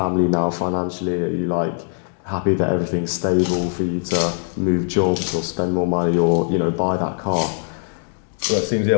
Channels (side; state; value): right; silent; 62 dB below the other